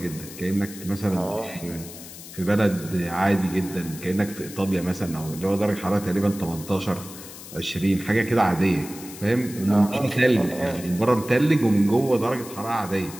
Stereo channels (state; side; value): noise; left; hiss, 15 dB below the sound